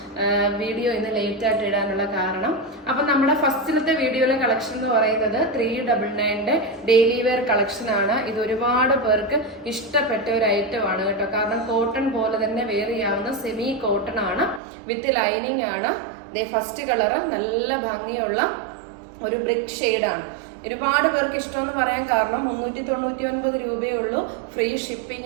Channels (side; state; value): left; drops out; at 14.6 s